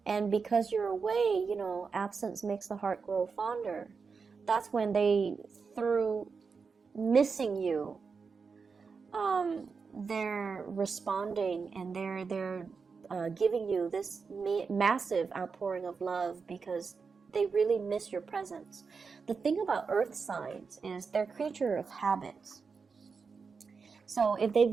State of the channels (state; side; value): quieter; left; 5.2 dB